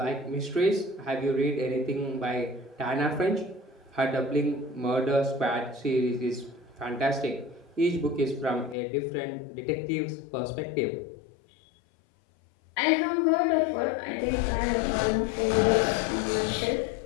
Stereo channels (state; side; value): drops out; right; at 8.8 s